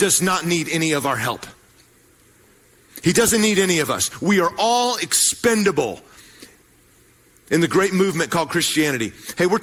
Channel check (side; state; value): both; identical; correlation 1.00